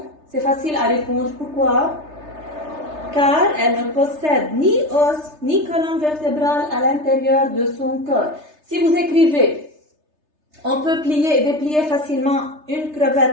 c'est facile à répondre. Pourquoi? Car elle ne possède ni os ni colonne vertébrale à l'intérieur de son corps. Si vous écrivez on peut plier et déplier facilement une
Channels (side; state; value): left; late; 3.3 ms